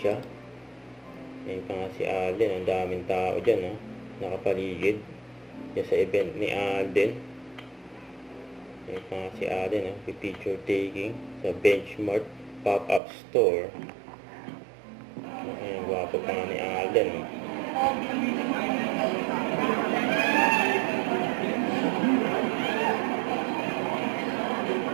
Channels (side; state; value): left; drops out; at 13.0 s